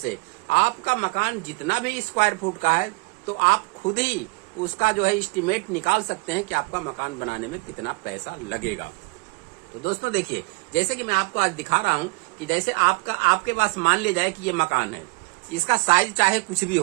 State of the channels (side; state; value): left; quieter; 29.7 dB